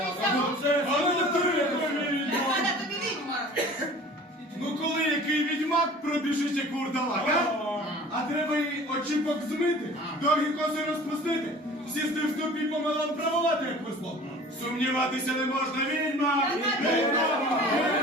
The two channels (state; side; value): normal; both; correlation 0.44